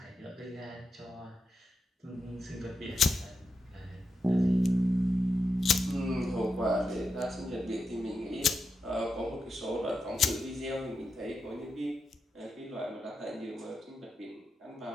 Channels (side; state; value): both; normal; correlation 0.87